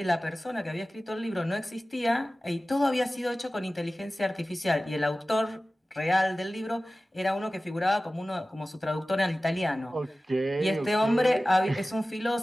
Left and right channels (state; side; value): normal; both; correlation 0.96